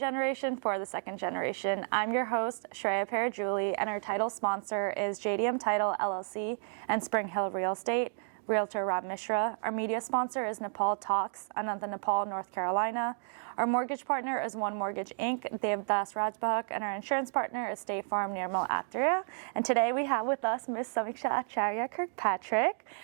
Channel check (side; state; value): left; silent; 56 dB below the other